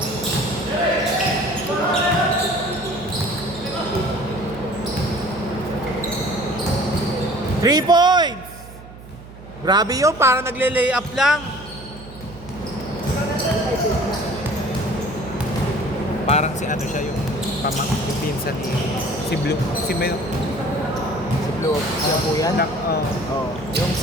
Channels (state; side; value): noise; right; hum, 17 dB below the sound